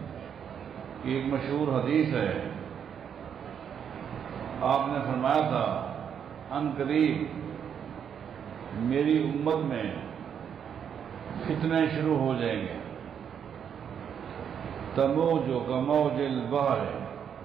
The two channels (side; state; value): left; quieter; 8.0 dB